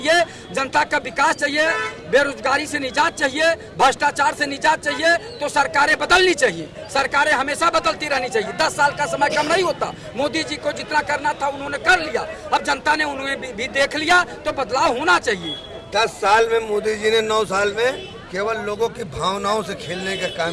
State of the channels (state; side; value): identical; both; correlation 1.00